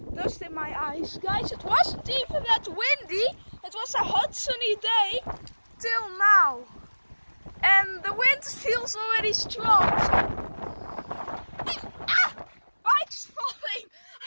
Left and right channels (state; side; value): inverted; both; correlation -1.00